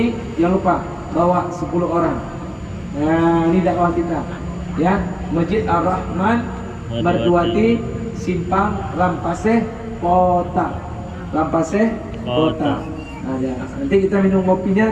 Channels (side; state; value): both; identical; correlation 1.00